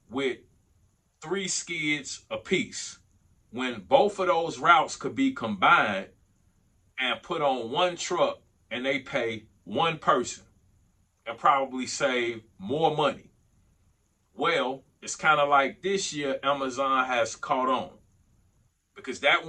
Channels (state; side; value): identical; both; correlation 1.00